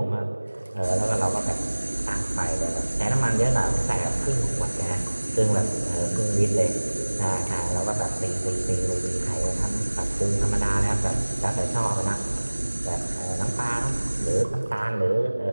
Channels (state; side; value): inverted; both; correlation -1.00